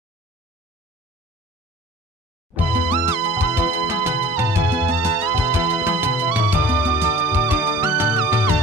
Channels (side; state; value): both; normal; correlation 0.46